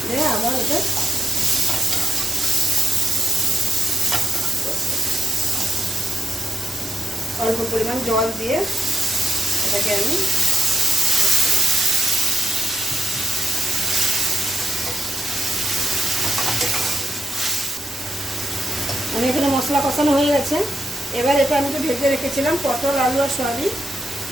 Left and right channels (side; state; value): both; normal; correlation 0.85